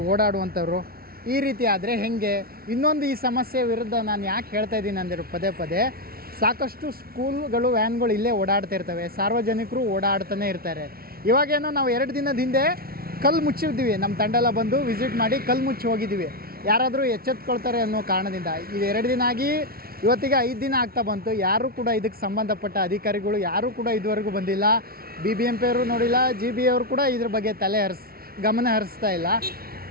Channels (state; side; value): late; left; 0.44 ms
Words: ಓಡಾಡುವಂಥವ್ರು. ಈ ರೀತಿ ಆದರೆ ಹೇಗೆ? ಇನ್ನೊಂದು ಈ ಸಮಸ್ಯೆ ವಿರುದ್ಧ ನಾನು ಯಾಕೆ ಹೇಳ್ತಾ ಇದ್ದೀನಿ ಅಂದರೆ ಪದೇ ಪದೇ ಸಾಕಷ್ಟು ಸ್ಕೂಲ್ಗಳು ವ್ಯಾನ್ಗಳು ಇಲ್ಲೇ ಓಡಾಡ್ತಾ ಇರ್ತವೆ, ಸಾರ್ವಜನಿಕರು ಓಡಾಡ್ತಾನೆ ಇರ್ತಾರೆ. ಇವಾಗೇನೋ ನಾವು 2 ದಿನದ ಹಿಂದೆ ಕಲ್ಲು ಮುಚ್ಚಿದ್ದೀವಿ, ನಮ್ಮ ತಂಡ ಎಲ್ಲ ಬಂದು ವಿಸಿಟ್ ಮಾಡಿ ಕಲ್ಲು ಮುಚ್ಚಿ ಹೋಗಿದ್ದೀವಿ. ಯಾರಾದರೂ ಎಚ್ಚೆತ್ಕೊಳ್ತಾರೆ ಅನ್ನೋ ಕಾರಣದಿಂದ ಇದು 2 ದಿನ ಆಗಿ ಇವತ್ತಿಗೆ 5 ದಿನ ಆಗ್ತಾ ಬಂತು. ಯಾರೂ ಕೂಡ ಇದಕ್ಕೆ ಸಂಬಂಧಪಟ್ಟ ಅಧಿಕಾರಿಗಳು ಯಾರೂ ಕೂಡ ಇದುವರೆಗೂ ಬಂದಿಲ್ಲ. BBMP ಅವರು ನೋಡಿಲ್ಲ, GB ಅವರು ಕೂಡ ಇದ್ರ ಬಗ್ಗೆ ಗಮನ ಹರಿಸ್ತಾ ಇಲ್ಲ.